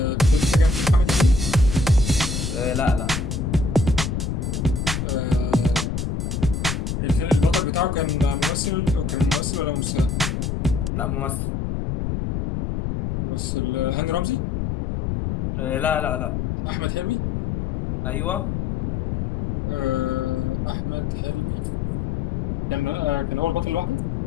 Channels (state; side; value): noise; left; rumble, 2 dB below the sound